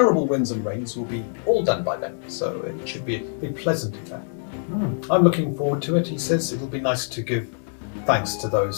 winds and rains will be all done by then, so it should be a pleasant affair. I'm looking forward to it, he says. It'll be nice to give thanks to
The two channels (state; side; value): silent; right; digital silence